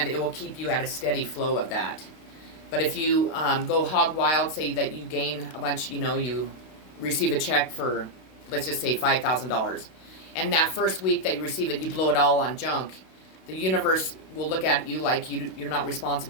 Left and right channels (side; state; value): right; late; 32 ms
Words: it will keep you at a steady flow of that. But if you go hog wild, say that you gain a bunch, you receive a check for, let's just say $5,000, and that first week that you receive it, you blow it all on junk, the universe will look at you like you're not